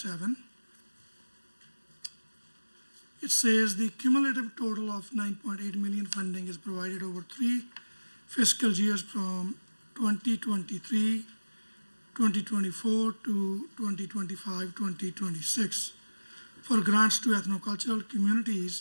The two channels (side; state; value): both; inverted; correlation -1.00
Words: it says the cumulative total of 9.8 million funding is provided over 3 fiscal years from 2023, 2024 to 2025, 2026 for grants to ethnocultural